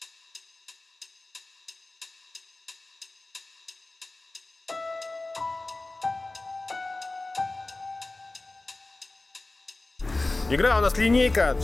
Игра у нас линейка,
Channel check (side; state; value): right; quieter; 3.1 dB